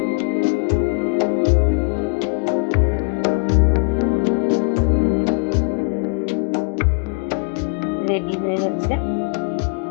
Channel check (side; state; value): right; quieter; 35.5 dB